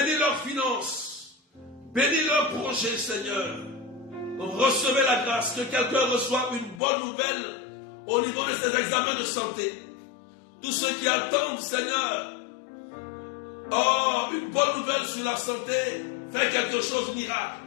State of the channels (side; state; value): right; drops out; at 6.8 s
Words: leurs finances, bénis leurs projets, Seigneur. Recevez la grâce, que quelqu'un reçoive une bonne nouvelle au niveau de ses examens de santé. Tous ceux qui attendent, Seigneur, une bonne nouvelle sur la santé, fais quelque chose de miracle.